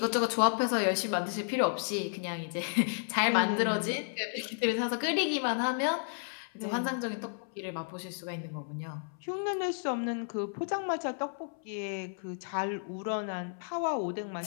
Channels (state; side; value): silent; right; 56 dB below the other